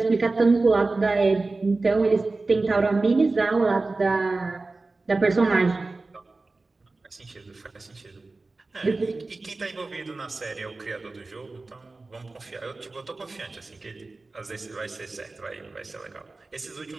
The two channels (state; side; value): quieter; left; 3.4 dB